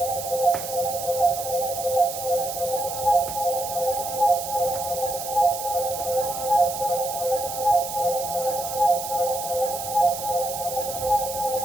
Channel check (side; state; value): right; noise; hiss, 8 dB below the sound